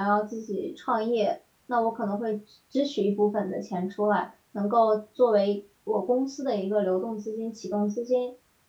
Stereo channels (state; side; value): identical; both; correlation 1.00